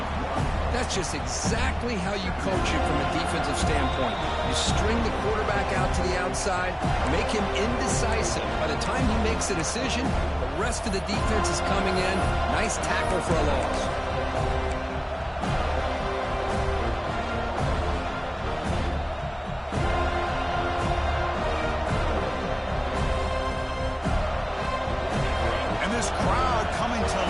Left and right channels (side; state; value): both; identical; correlation 1.00